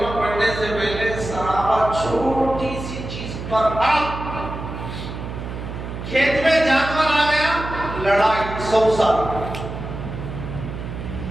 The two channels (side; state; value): right; noise; hum, 8 dB below the sound